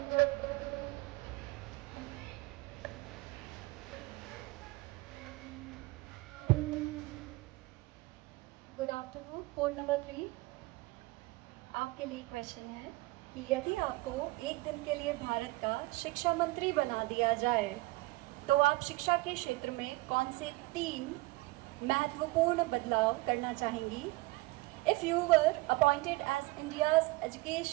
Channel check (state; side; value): quieter; left; 22.1 dB